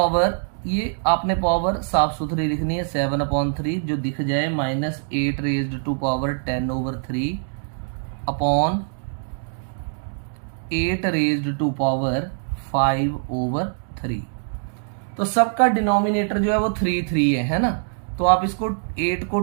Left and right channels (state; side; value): silent; left; digital silence